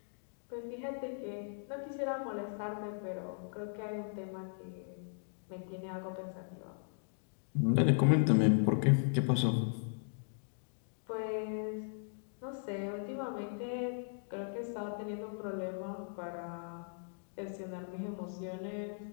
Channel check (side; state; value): right; silent; digital silence